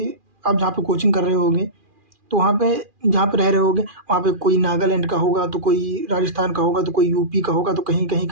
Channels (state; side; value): late; left; 2.4 ms